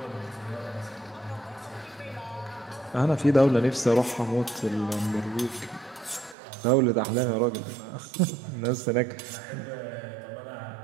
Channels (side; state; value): left; drops out; at 6.4 s